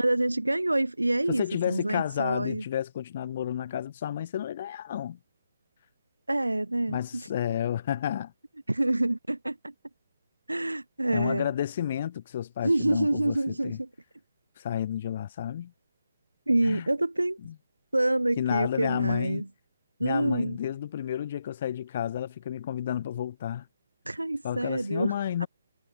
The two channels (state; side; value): inverted; both; correlation -0.85